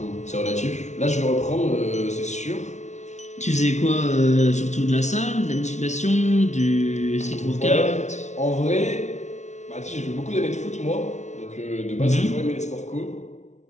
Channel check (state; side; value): late; right; 0.33 ms